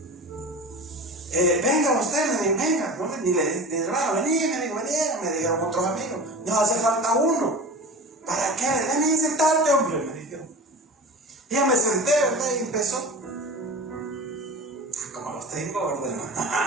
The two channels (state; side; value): normal; both; correlation 0.35